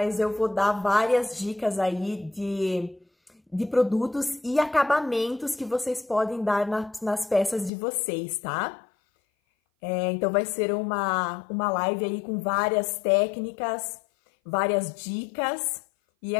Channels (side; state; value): right; drops out; at 7.7 s